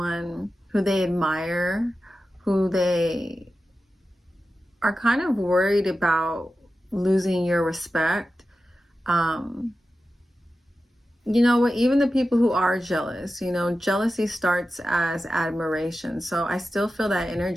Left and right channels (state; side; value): normal; both; correlation 0.93